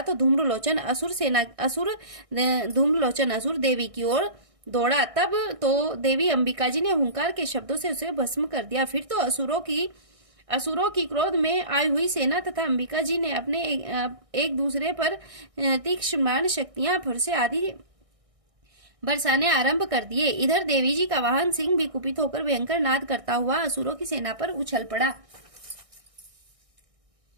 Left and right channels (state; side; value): late; left; 1.6 ms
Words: तो धूम्रलोचन असुर देवी की ओर दौड़ा। तब तो देवी अंबिका जी ने हुंकार के शब्दों से उसे भस्म कर दिया। फिर तो असुरों की क्रोध में आई हुई सेना तथा अंबिका जी ने अपने एक दूसरे पर तीक्ष्ण शक्तियां फरसे आदि बरसाने आरंभ कर दिए। इधर देवी जी का वाहन सिंह भी कुपित होकर भयंकर नाद करता हुआ असुरों की सेना पर उछल पड़ा।